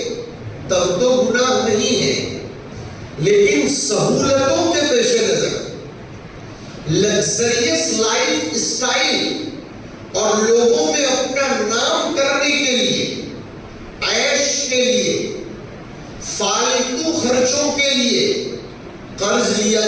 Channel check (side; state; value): both; identical; correlation 1.00